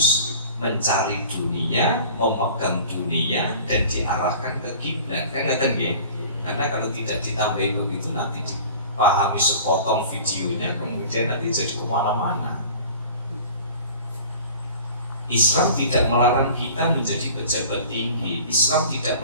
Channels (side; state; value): both; inverted; correlation -0.43